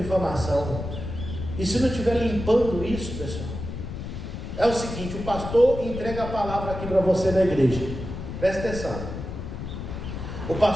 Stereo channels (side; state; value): left; noise; rumble, 7 dB below the sound